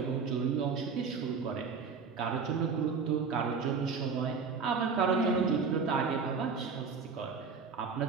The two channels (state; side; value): quieter; left; 5.3 dB